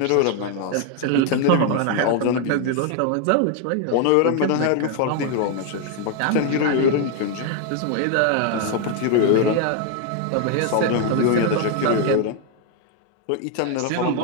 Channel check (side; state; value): both; different; correlation 0.01